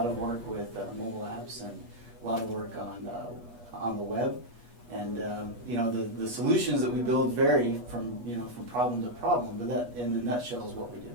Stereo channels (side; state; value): left; late; 8.3 ms